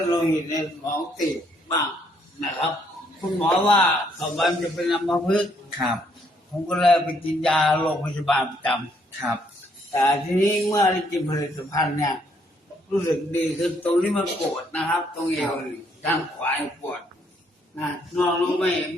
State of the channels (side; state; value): both; normal; correlation 0.69